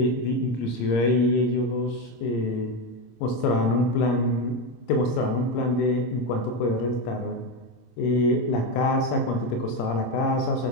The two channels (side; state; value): right; late; 26 ms